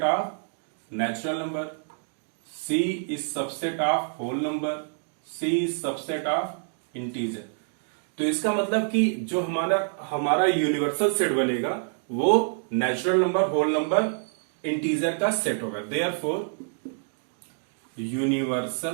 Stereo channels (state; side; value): silent; left; digital silence